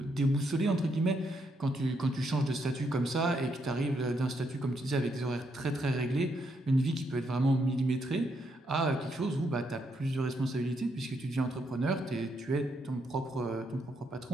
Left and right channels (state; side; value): normal; both; correlation 0.77